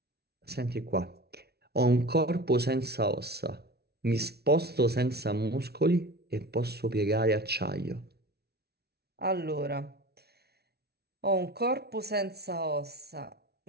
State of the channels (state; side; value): late; left; 0.47 ms